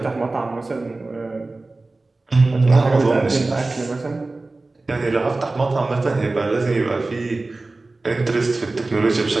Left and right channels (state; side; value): quieter; left; 3.2 dB